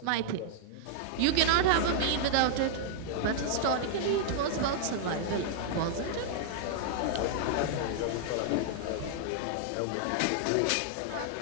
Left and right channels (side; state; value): both; different; correlation -0.01